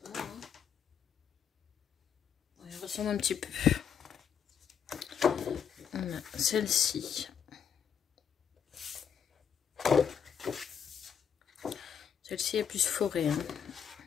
ressemble un petit peu. On a celle-ci. Celle-ci est plus forêt. Hein.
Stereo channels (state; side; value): quieter; right; 7.7 dB